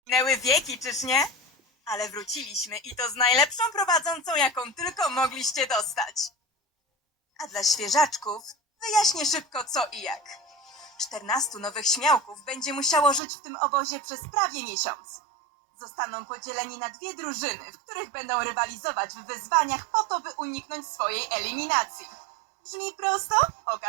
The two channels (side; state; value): left; drops out; at 13.2 s